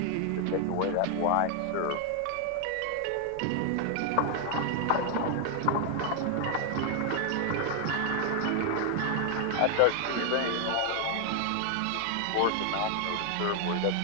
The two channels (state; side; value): different; both; correlation 0.00